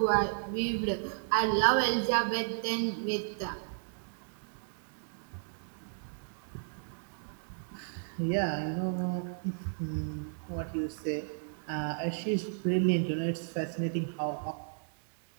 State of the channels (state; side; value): silent; left; digital silence